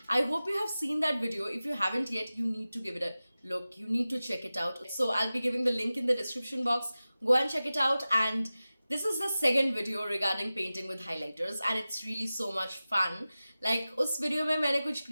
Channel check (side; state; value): both; inverted; correlation -0.96